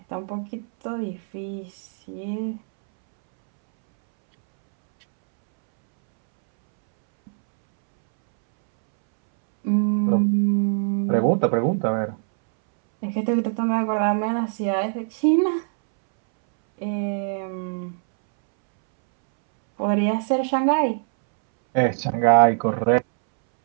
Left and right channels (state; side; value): silent; left; 64 dB below the other